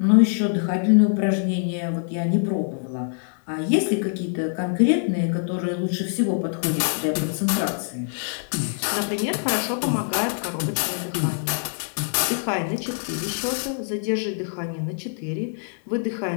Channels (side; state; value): right; silent; digital silence